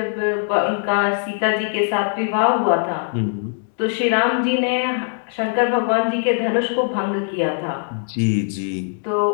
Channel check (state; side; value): silent; right; 60 dB below the other